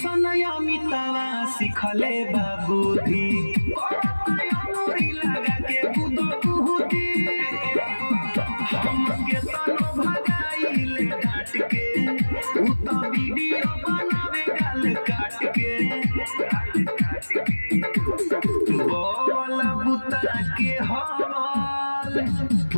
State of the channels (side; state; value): both; inverted; correlation -1.00